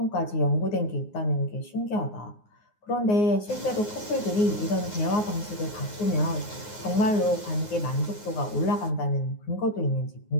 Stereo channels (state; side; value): late; right; 9.6 ms